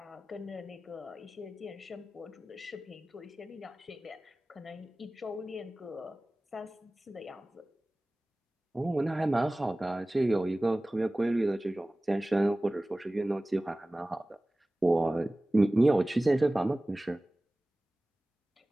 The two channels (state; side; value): normal; both; correlation 0.98